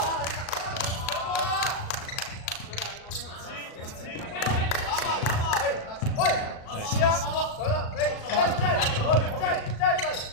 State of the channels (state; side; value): late; right; 37 ms